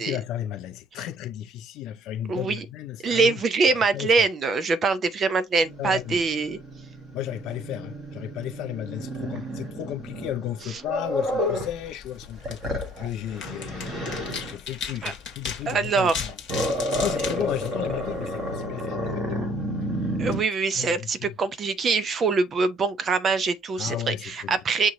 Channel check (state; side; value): normal; both; correlation 0.62